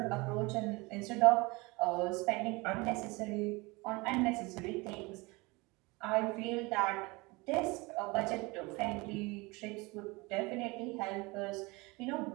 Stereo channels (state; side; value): quieter; left; 24.7 dB